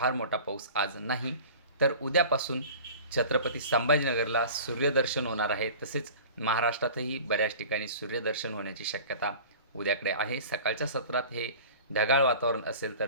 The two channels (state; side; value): inverted; both; correlation -0.40